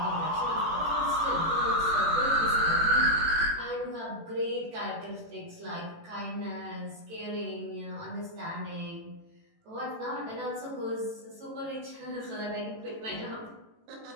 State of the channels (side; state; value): left; late; 18 ms